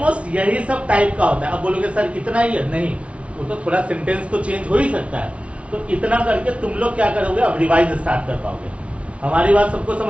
यही सब टाइप का होता है। अब बोलोगे सर इतना ही है? नहीं, वो तो थोड़ा सेंटेंस तो चेंज हो ही सकता है। तो इतना करके तुम लोग क्या करोगे? अब रिवाइज स्टार्ट कर पाओगे। हमारी बात सबको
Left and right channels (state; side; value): late; left; 0.062 ms